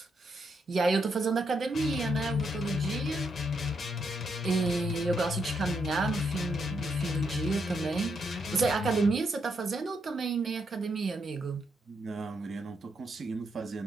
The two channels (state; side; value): normal; both; correlation 0.79